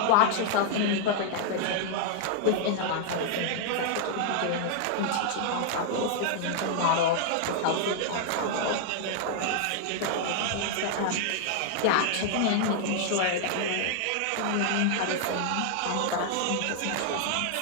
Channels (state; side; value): different; both; correlation 0.00